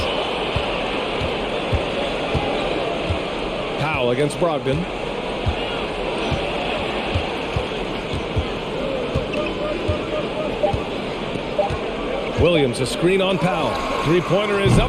Powell against Brogdon. Williams, a screen on Powell. Three-pointer is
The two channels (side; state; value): both; identical; correlation 1.00